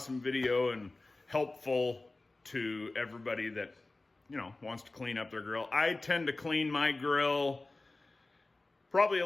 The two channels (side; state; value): right; quieter; 3.1 dB